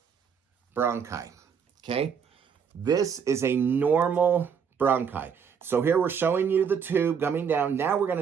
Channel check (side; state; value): left; quieter; 6.9 dB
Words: bronchi, okay? This is a normal bronchi. So here we're showing you the tube coming down. Now we're